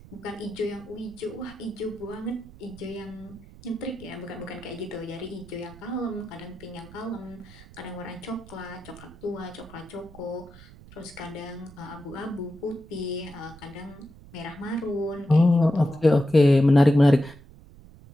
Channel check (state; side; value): noise; right; rumble, 20 dB below the sound